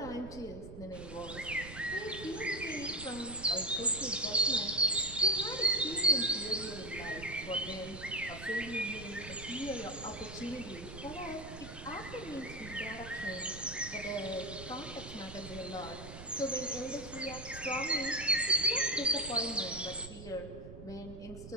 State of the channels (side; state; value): right; noise; rumble, 12 dB below the sound